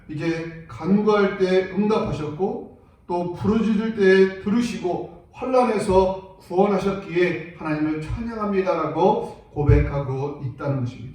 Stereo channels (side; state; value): both; identical; correlation 1.00